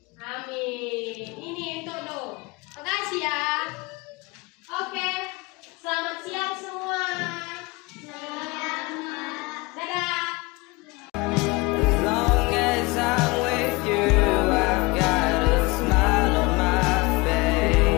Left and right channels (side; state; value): right; quieter; 24.7 dB